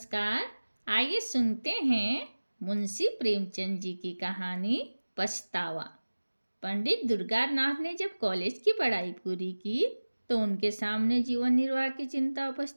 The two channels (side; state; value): both; inverted; correlation -1.00